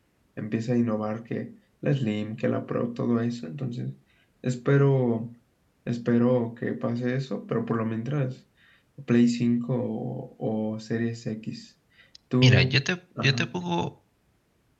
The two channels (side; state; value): both; identical; correlation 1.00